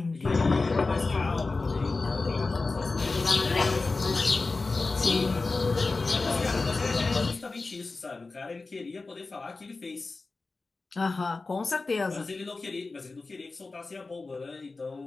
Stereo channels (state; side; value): quieter; right; 3.7 dB